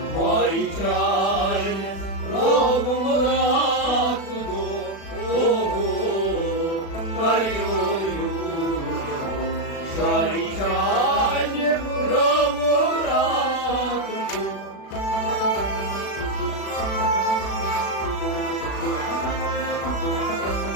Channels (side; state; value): right; late; 36 ms